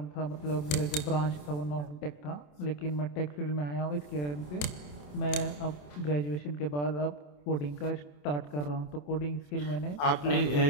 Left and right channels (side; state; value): right; late; 27 ms